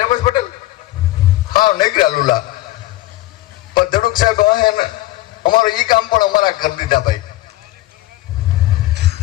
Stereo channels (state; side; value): quieter; right; 17.1 dB